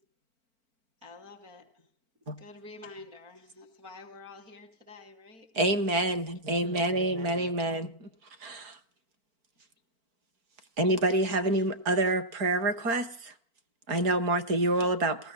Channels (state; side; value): late; left; 4.4 ms